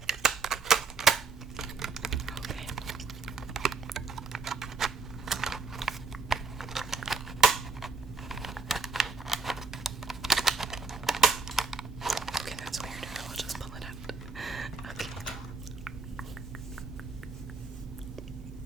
Okay. Okay, that's weird. I'll just pull it out. Okay.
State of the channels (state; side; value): quieter; left; 4.4 dB